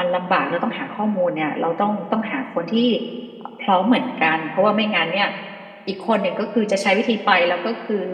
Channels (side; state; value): both; identical; correlation 1.00